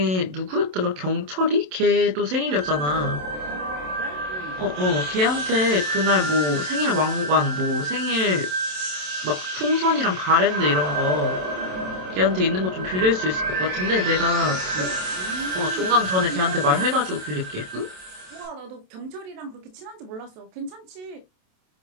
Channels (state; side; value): late; left; 27 ms